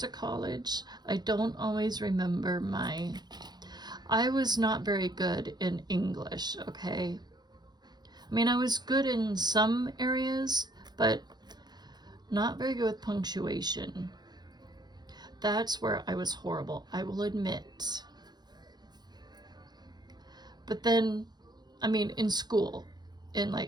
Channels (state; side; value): late; left; 0.20 ms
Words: college. I don't always remember I was not very good in English, okay? I mean, I was good in some areas, but not very good with punctuation. That's where I was horrible, I will admit. But then, I mean, in school, in